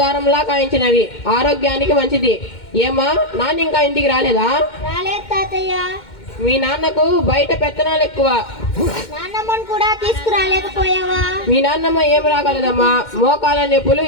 కాయించినవి, ఆరోగ్యానికి మంచిది. ఏమా నాన్న ఇంకా ఇంటికి రాలేదా? రాలేదు తాతయ్య. మీ నాన్నకు బయట పెత్తనాలు ఎక్కువ. నాన్నమ్మని కూడా తీసుకురాలేకపోయావా? మీ నాన్నమ్మ ఏం రాగలదమ్మా, మోకాల నొప్పులు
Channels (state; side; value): late; right; 2.1 ms